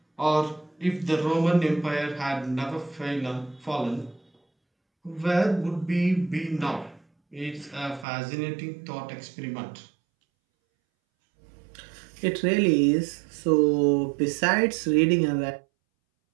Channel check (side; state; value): left; drops out; at 8.1 s